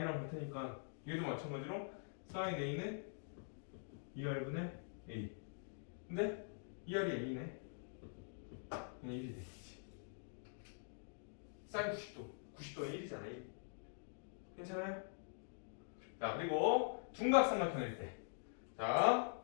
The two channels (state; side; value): silent; right; digital silence